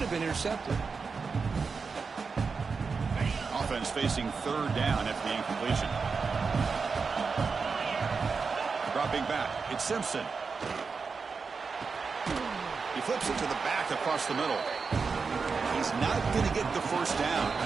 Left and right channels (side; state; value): left; quieter; 5.0 dB